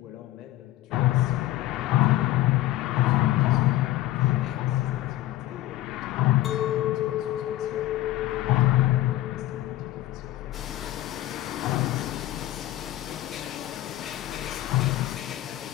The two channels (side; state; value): right; quieter; 15.1 dB